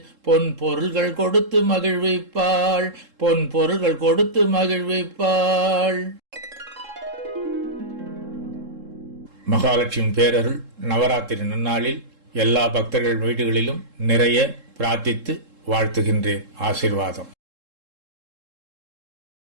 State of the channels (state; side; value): late; left; 3.7 ms